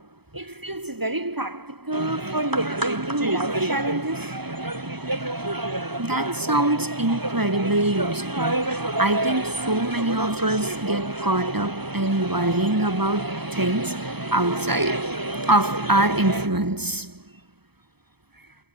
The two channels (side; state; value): left; late; 0.98 ms